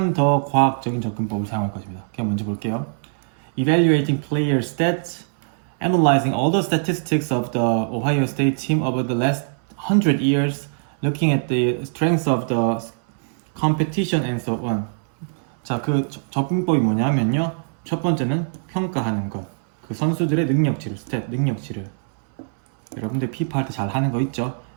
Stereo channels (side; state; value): left; silent; 63 dB below the other